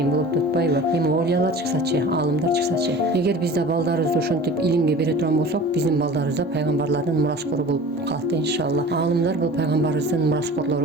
болот деп атпайбы? Эми оолиялар чыксачы, аалымдар чыксачы. Эгер биз да балдарыбызды ошентип илимге бере турган болсок, биздин балдарыбыз да пайгамбарлардын мураскору болуп калат да иншалла. Аалымдар бул пайгамбарыбыздын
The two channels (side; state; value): both; normal; correlation 0.41